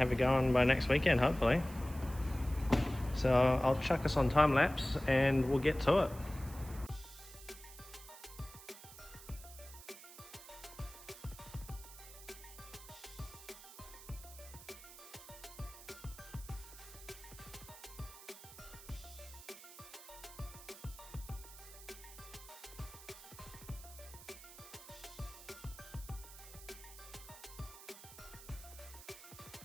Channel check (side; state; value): right; noise; hiss, 16 dB below the sound